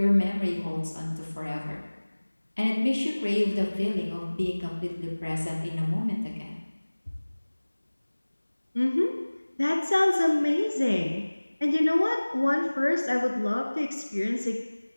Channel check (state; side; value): inverted; both; correlation -1.00